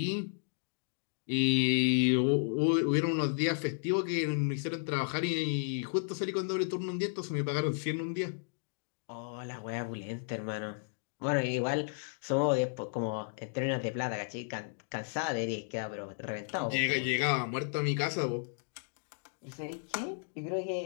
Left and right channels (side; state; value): right; silent; digital silence